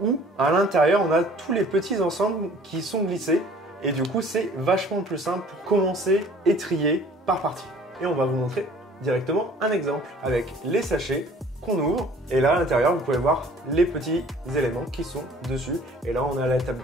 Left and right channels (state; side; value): normal; both; correlation 0.52